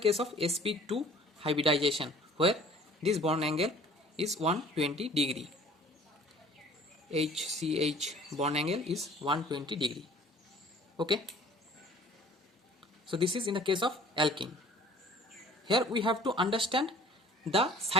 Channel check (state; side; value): normal; both; correlation 0.50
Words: of sp2 hybridization, where this bond angle is 120 degree. HCH bond angle is 120 degree. Okay. So this is in the case of alkene. Here we have to understand the